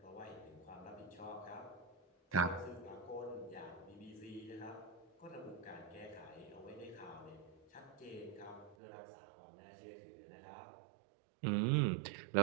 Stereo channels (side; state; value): left; drops out; at 8.8 s